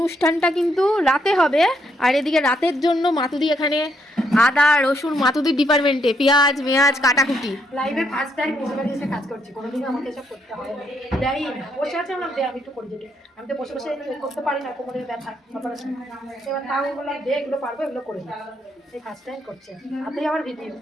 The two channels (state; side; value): normal; both; correlation 0.74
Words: অনুষ্ঠানটা কিন্তু রাতে হবে, আর এদিকে রাতের জন্য মাতুদি এখানে আদা রসুন, মাতুদির ডিপার্টমেন্টে পেঁয়াজ মেয়াজ কাটাকুটি। লাইভে ফার্স্ট টাইম বসে বাড়ি এসে কাজ করছি, কোনোদিনও আমাকে এসব করতে হয় না। দেয় না, বসে আছে আমার দেয়, আমি একটু করে দিই। আমি তো বসে বসে করতে পারি না, কোমরের ব্যথা অপারেশন। এবার তাও বললাম দে, এগুলো পারবো, এগুলো করে দিই। এই ফার্স্ট টাইম করছে, হাতেই আমার ভিডিও।